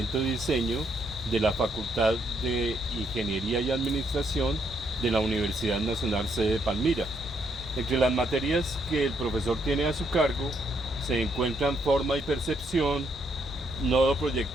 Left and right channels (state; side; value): normal; both; correlation 0.74